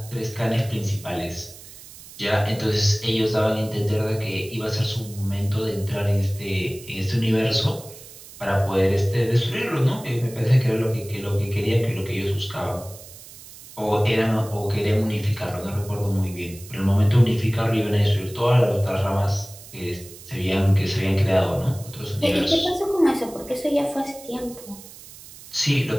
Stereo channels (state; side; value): noise; right; hiss, 18 dB below the sound